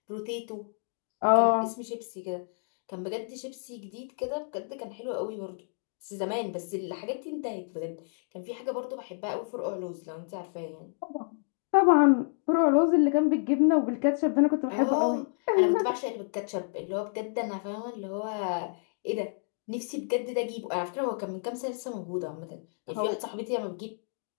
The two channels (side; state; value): right; silent; 58 dB below the other